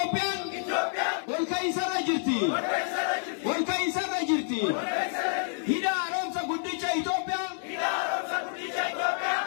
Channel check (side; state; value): right; silent; digital silence